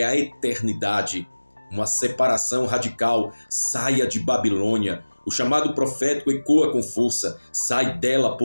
a eternidade. Uma separação radical. Saia de Babilônia. O chamado profético ecoa com força. Sai dela,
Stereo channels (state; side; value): inverted; both; correlation -1.00